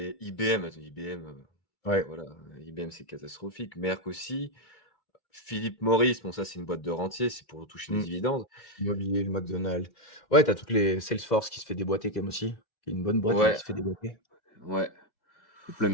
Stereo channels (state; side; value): late; right; 2.0 ms